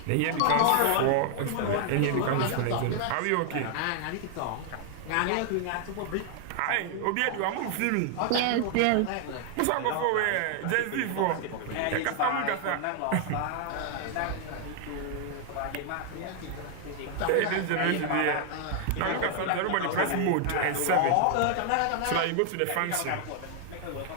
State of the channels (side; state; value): both; different; correlation 0.00